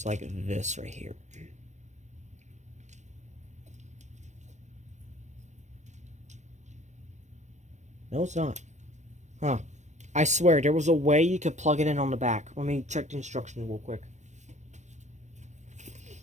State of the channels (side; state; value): left; late; 0.34 ms